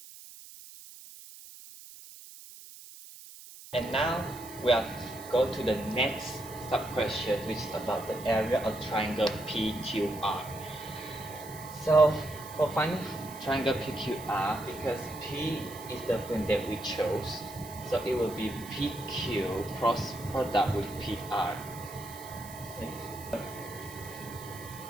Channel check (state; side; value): noise; right; hiss, 16 dB below the sound